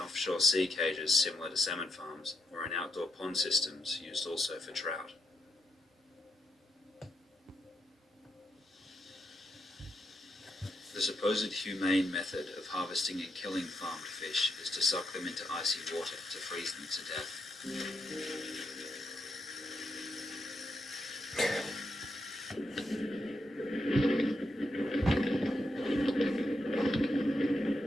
offshore sea cages similar to salmon farms or in outdoor pond systems used also for trout. The supposed humane method of harvesting and killing farmed fish is to suck them into icy water to freeze them to death.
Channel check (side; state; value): both; normal; correlation 0.81